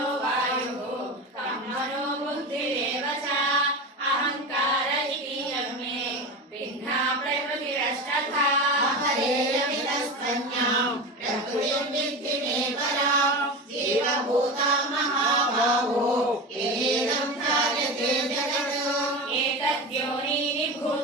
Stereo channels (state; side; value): normal; both; correlation 0.25